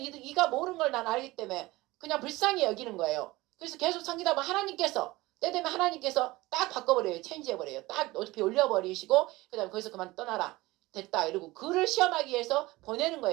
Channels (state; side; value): quieter; left; 19.9 dB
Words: 모르는 걸 난 알기 때문에 그냥 불쌍히 여기는 거예요. 그래서 계속 섬기다 보면 하나님께서 때 되면 하나님께서 딱 바꿔버려요. 체인지해버려요. 딱 높이 올려버리시고 그 다음에 거기서 그만 떠나라. 됐다 이러고 그를 시험하기 위해서 보내는